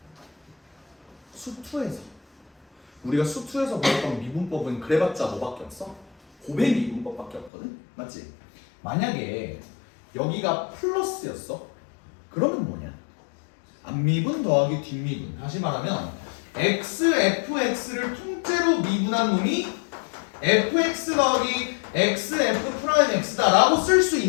수투에서 우리가 수투에서 배웠던 미분법은 그래봤자 뭐밖에 없어? 고백 미분법밖에 없거든? 맞지? 만약에 여기가 플러스였어? 그러면 뭐냐? 앞미분 더하기 뒷미분. 다시 말하면 x, fx를 통째로 미분한 놈이 fx 더하기 x, f 프라임 x다 라고 쓸 수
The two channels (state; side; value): drops out; right; at 7.5 s